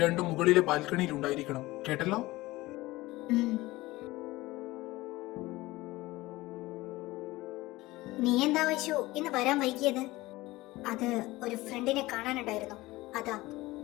രണ്ടും മുകളിലെ ബാൽക്കണിയിൽ ഉണ്ടായിരിക്കണം, കേട്ടല്ലോ? ഉം. നീ എന്താ വൈശു ഇന്ന് വരാൻ വൈകിയത്? അത് ഒരു ഫ്രണ്ടിനെ കാണാനുണ്ടായിരുന്നു, അതാ.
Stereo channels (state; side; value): quieter; right; 19.4 dB